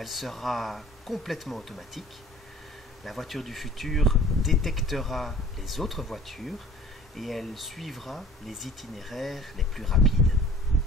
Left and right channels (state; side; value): normal; both; correlation 0.49